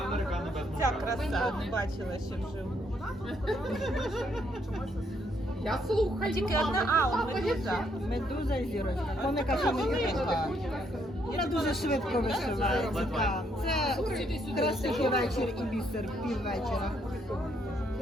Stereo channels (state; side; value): normal; both; correlation 0.72